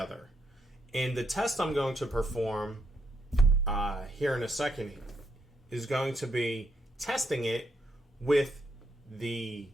And the test I'm going to perform here in a second is going to be testing it with the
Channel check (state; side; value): normal; both; correlation 0.77